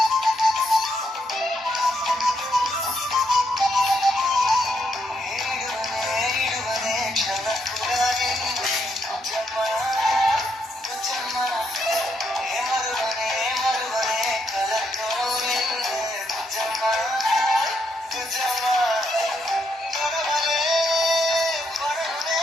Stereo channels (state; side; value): normal; both; correlation 0.78